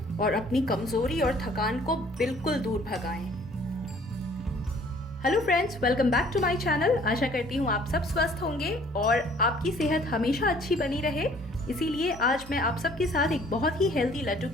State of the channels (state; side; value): normal; both; correlation 0.56